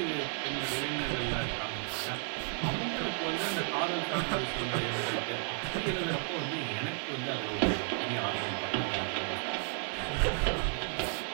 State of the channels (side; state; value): left; quieter; 37.7 dB